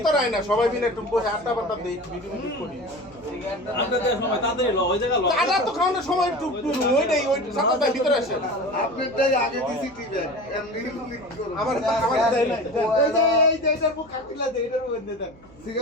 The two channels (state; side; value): noise; right; hum, 25 dB below the sound